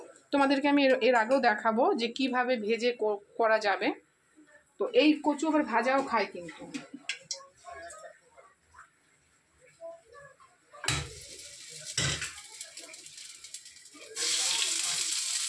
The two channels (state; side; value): identical; both; correlation 1.00